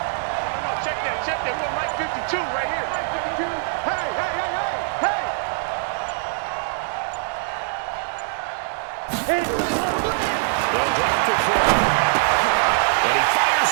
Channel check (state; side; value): silent; left; 61 dB below the other